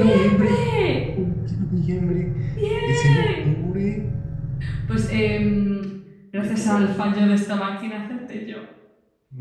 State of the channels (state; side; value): identical; both; correlation 1.00